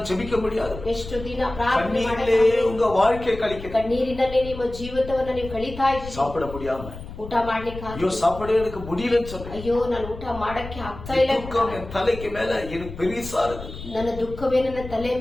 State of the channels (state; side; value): noise; left; rumble, 12 dB below the sound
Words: ஜெபிக்க முடியாது. ಎಷ್ಟು ದಿನ ಪ್ರಾರ್ಥನೆ கண்ணீரிலே உங்க வாழ்க்கை கழிக்க, ಕಣ್ಣೀರಿನಲ್ಲೇ ನಿಮ್ಮ ಜೀವಿತವನ್ನ ನೀವು ಕಳೀತಾ ಇದ್ದೀರಿ. சாப்பிட முடியாம, ಊಟ ಮಾಡ್ಲಿಕ್ಕೆ ஐயோ சாப்பிட எனக்கு முடியலன்னு சொல்றேன். ಅಯ್ಯೋ ನಾನು ಊಟ ಮಾಡಕ್ಕೆ ಆಗ್ತಾ ಇಲ್ಲ. துக்கம் என் தலைக்கு மேல எனக்கு பெரிசா இருக்கு. ನನ್ನ ದುಃಖವೇ ನನ್ನ ತಲೆಯ